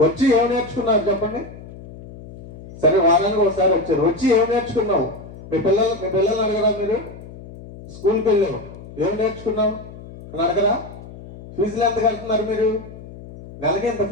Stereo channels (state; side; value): noise; left; hum, 16 dB below the sound